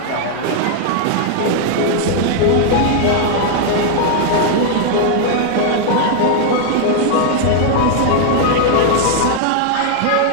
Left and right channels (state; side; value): different; both; correlation 0.00